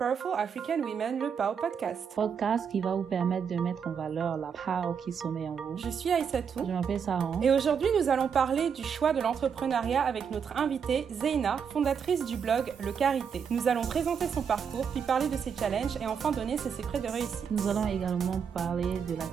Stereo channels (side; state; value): left; quieter; 6.9 dB